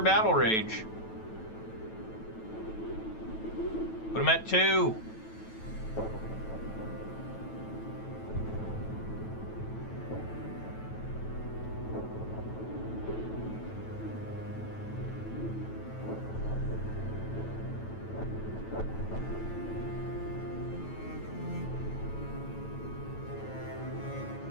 Battle Rage. Put them at 2.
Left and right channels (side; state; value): right; late; 9.1 ms